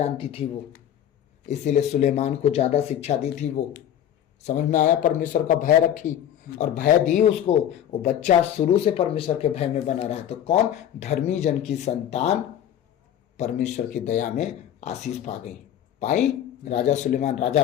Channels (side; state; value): right; quieter; 10.4 dB